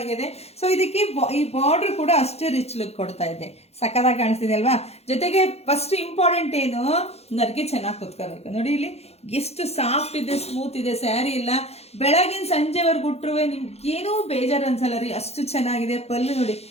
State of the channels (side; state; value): right; late; 0.30 ms